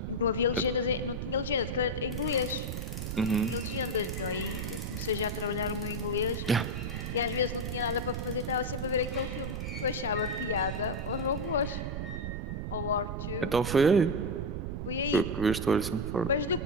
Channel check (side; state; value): right; noise; rumble, 4 dB below the sound